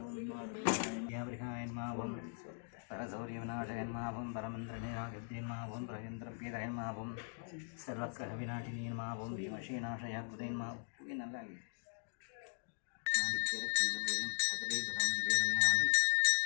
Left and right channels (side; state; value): right; silent; digital silence